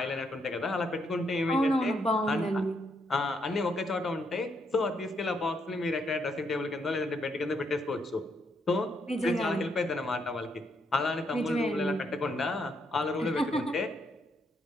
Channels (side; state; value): both; normal; correlation 0.76